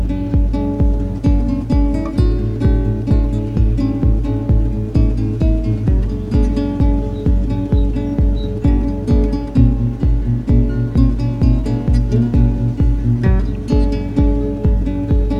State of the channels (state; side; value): identical; both; correlation 1.00